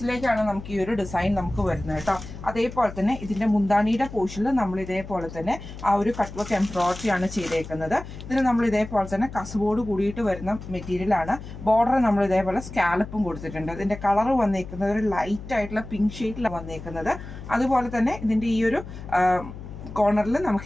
നമുക്ക് ഈ ഒരു ഡിസൈൻ നമുക്ക് വരുന്നത് കേട്ടോ. അതേപോലെ തന്നെ ഇതിൻ്റെ മുന്താണിയുടെ പോർഷനിൽ നമ്മൾ ഇതേപോലെ തന്നെ ആ ഒരു കട്ട് വർക്ക് എംബ്രോയിഡറി ആണ് ചെയ്തേക്കുന്നത്. ഇതിന് നമ്മൾ ഇതേപോലെ തന്നെ കസവോട് കൂടിയിട്ട് വരുന്ന മെറ്റീരിയലാണ്. ബോർഡർ നമ്മൾ ഇതേപോലെ സ്കാലപ്പും കൊടുത്തിട്ടുണ്ട്. ഇതിൻ്റെ കളർ വന്നേക്കുന്നത് ഒരു ലൈറ്റ് ആയിട്ടുള്ള പിങ്ക് ഷെയ്ഡിലാണ് വന്നേക്കുന്നത്. അതുപോലെ തന്നെ ഇതിൻ്റെ ഈ ഒരു കോർണറിൽ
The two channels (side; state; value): left; noise; hum, 12 dB below the sound